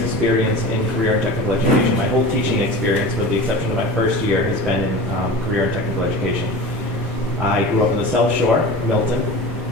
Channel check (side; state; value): both; normal; correlation 0.33